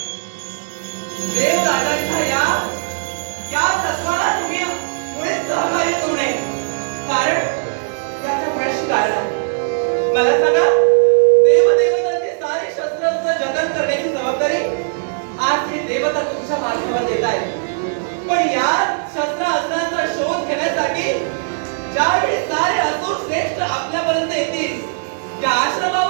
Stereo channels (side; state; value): left; silent; 67 dB below the other